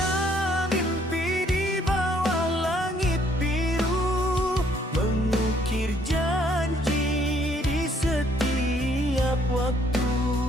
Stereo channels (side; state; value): both; normal; correlation 0.66